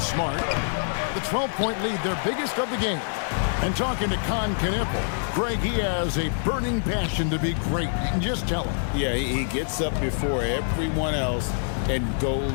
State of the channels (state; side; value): silent; right; digital silence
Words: Smart. The 12-point lead, their biggest of the game. And talking to Kneppel, Greg, he has a burning passion to be great. You can just tell him. Yeah, he gets up before everyone else and